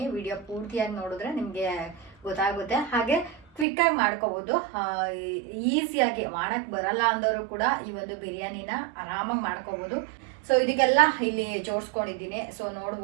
ವಿಡಿಯೋ ಪೂರ್ತಿಯಾಗಿ ನೋಡಿದ್ರೆ ನಿಮಗೆ ಗೊತ್ತಾಗುತ್ತೆ. ಹಾಗೆ ಕ್ವಿಕ್ಕಾಗಿ ಮಾಡ್ಕೋಬೋದು. ಈಸಿಯಾಗಿ ಮಾಡೋಕ್ಕೆ ಬರಲ್ಲ ಅಂದವರು ಕೂಡ ಈ ಒಂದು ಬಿರಿಯಾನಿನ ಆರಾಮಾಗಿ ಮಾಡ್ಕೋಬೋದು. ಸೊ ಇದಕ್ಕೆಲ್ಲ ಇಲ್ಲಿ ಜೋಡಿಸ್ಕೊಂಡಿದ್ದೀನಿ. ಸೊ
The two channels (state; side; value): drops out; left; at 3.7 s